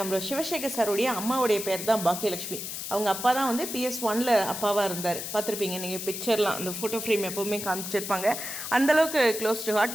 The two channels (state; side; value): noise; left; hiss, 6 dB below the sound